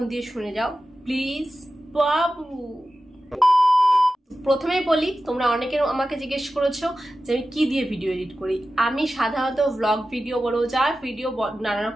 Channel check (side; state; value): both; normal; correlation 0.94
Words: দিয়ে শুনে যাও প্লিজ বাবু। প্রথমেই বলি, তোমরা অনেকে আমাকে জিজ্ঞেস করেছো যে আমি কি দিয়ে ভিডিও এডিট করি। আমি সাধারণত ব্লগ ভিডিও বলো, যা ভিডিও নানা